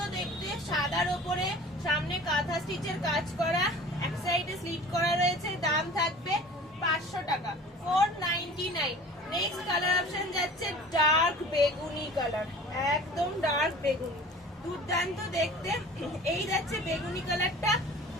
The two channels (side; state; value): both; normal; correlation 0.43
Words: দেখতে, সাদার ওপরে সামনে কাঁথা স্টিচের কাজ করা, এক সাইডে স্লিট করা রয়েছে। দাম থাকবে 500 টাকা, 499। নেক্সট কালার অপশন যাচ্ছে ডার্ক বেগুনি কালার, একদম ডার্ক বেগুনি, দুর্দান্ত দেখতে। এই যাচ্ছে বেগুনি কালারটা,